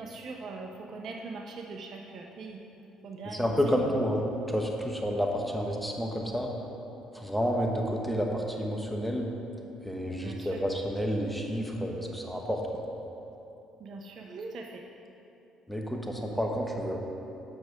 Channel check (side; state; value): both; normal; correlation 0.81